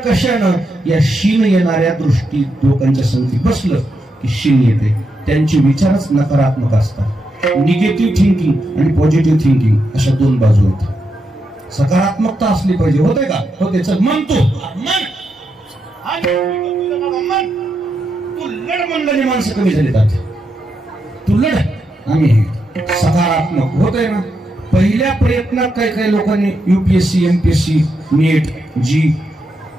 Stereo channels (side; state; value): both; normal; correlation 0.83